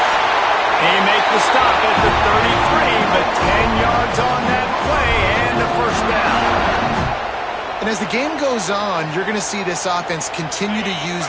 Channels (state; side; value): identical; both; correlation 1.00